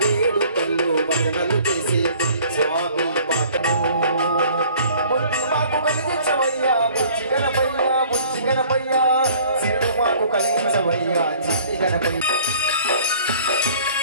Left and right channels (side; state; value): both; inverted; correlation -0.52